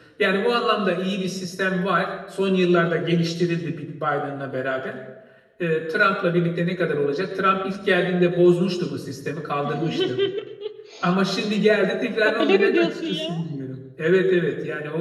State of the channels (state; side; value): identical; both; correlation 1.00